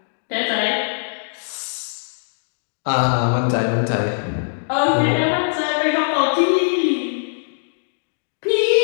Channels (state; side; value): silent; right; digital silence